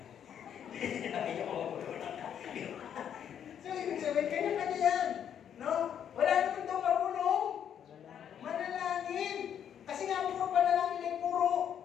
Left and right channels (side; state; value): right; quieter; 9.0 dB